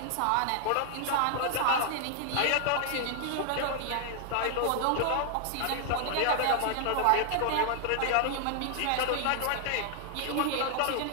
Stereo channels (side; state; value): both; different; correlation 0.00